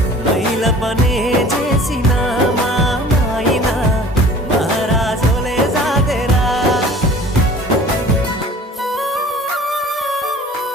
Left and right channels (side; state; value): both; normal; correlation 0.46